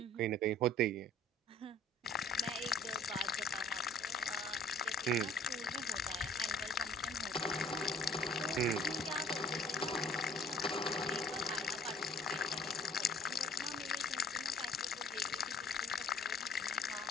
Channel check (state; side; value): normal; both; correlation 0.53